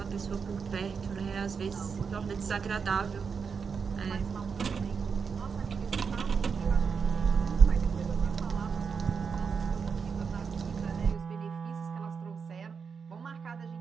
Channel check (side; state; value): left; quieter; 5.9 dB